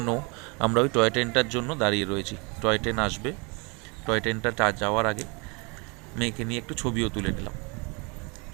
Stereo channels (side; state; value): left; quieter; 30.4 dB